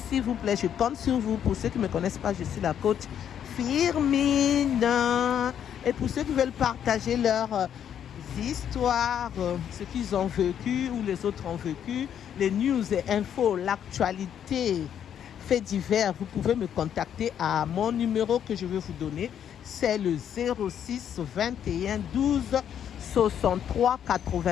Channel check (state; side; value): quieter; right; 9.2 dB